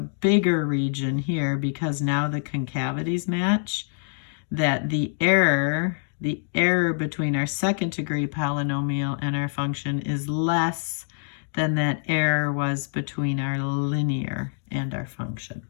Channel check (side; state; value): right; silent; digital silence